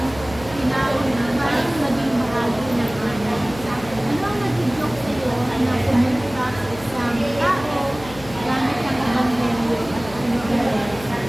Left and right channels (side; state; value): left; noise; hum, 16 dB below the sound